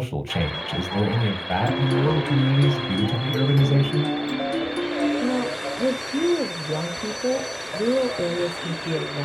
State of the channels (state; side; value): identical; both; correlation 1.00